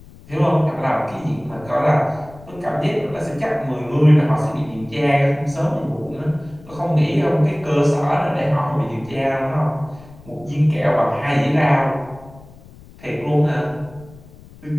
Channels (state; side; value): noise; left; rumble, 21 dB below the sound